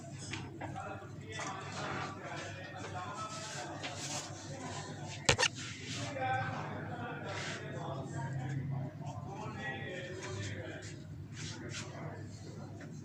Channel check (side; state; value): both; identical; correlation 1.00